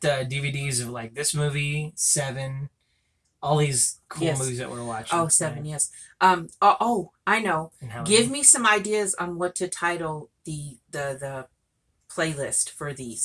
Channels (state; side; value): identical; both; correlation 1.00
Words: DVDs of like this movie, Seven, all these cool movies that we're watching. Oh, Seven, yes. I know. And how Give me some ideas on what to title the playlist for